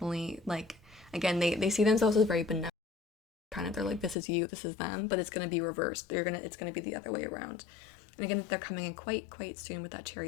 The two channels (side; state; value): right; drops out; at 4.2 s